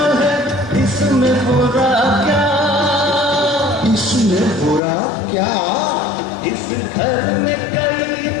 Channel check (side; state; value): right; drops out; at 4.8 s